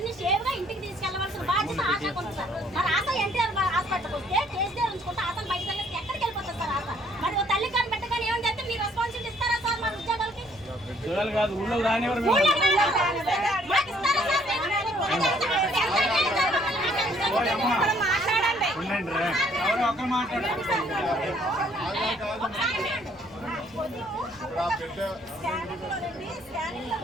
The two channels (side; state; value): left; noise; rumble, 27 dB below the sound